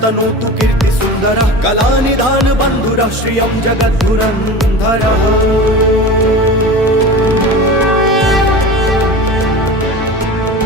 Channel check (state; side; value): normal; both; correlation 0.32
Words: कीर्ति सुन्दरः कलानिधान बन्धुरः श्रियं जगद्धुरन्धरः।